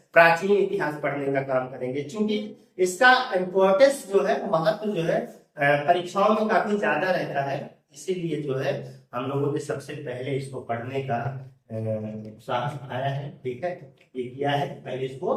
प्राचीन इतिहास पढ़ने का काम करेंगे। क्योंकि इसका इम्पोर्टेंस जो है, महत्व जो है परीक्षाओं में काफी ज्यादा रहता है, इसीलिए जो है हम लोगों ने सबसे पहले इसको पढ़ने का उत्साह आया है, ठीक है, ये किया है, पहले इसको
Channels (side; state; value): both; identical; correlation 1.00